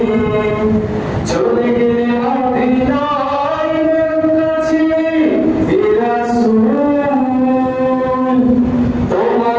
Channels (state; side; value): identical; both; correlation 1.00